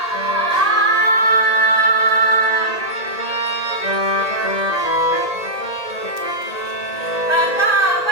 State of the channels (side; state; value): right; late; 1.8 ms